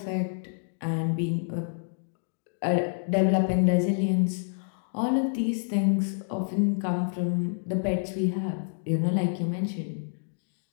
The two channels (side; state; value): right; silent; digital silence